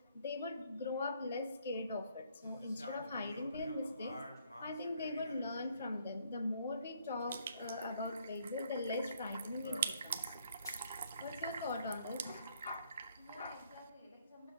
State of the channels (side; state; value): both; inverted; correlation -0.67